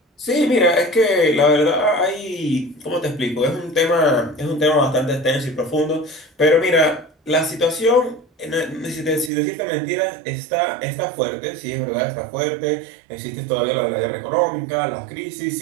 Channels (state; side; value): drops out; left; at 9.3 s